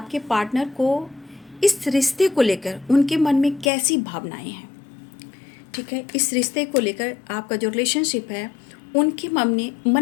पार्टनर को इस रिश्ते को लेकर उनके मन में कैसी भावनाएं हैं। ठीक है, इस रिश्ते को लेकर आपका जो रिलेशनशिप है उनके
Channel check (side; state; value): right; drops out; at 3.7 s